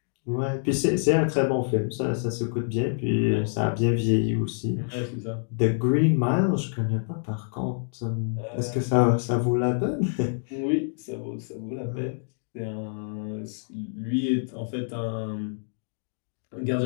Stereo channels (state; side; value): silent; right; digital silence